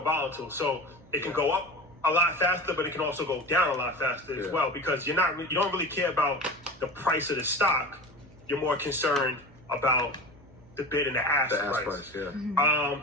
So it can go up a lot faster, but it can also go down a lot faster as well, because you don't really care about the price of the stock. You're more concerned about the bid and the ask price.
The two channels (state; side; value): noise; right; hum, 25 dB below the sound